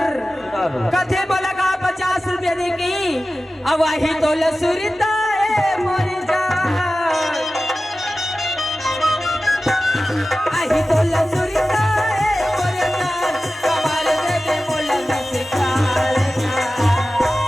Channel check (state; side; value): normal; both; correlation 0.95